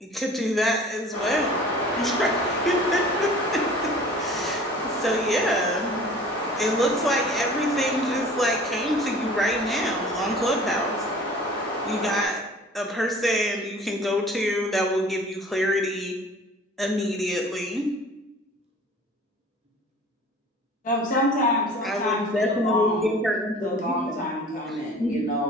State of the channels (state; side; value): normal; both; correlation 0.46